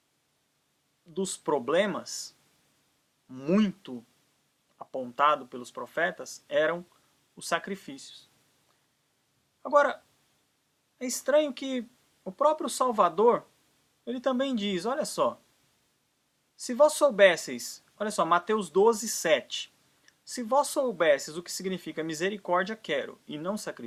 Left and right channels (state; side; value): identical; both; correlation 1.00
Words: dos problemas muito apontado pelos profetas eram os sacrifícios. Agora, é estranho que o próprio Salvador, ele também diz, olha só, se vós soubesseis, olha só, Mateus 12:7, se vós soubesseis o que significa misericórdia quero e não